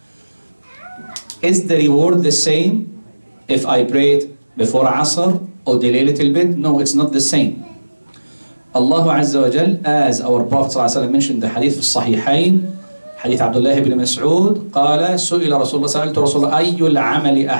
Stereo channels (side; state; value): both; inverted; correlation -1.00